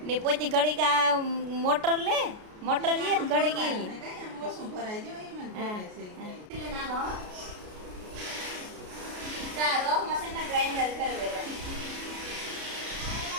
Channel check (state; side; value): late; left; 33 ms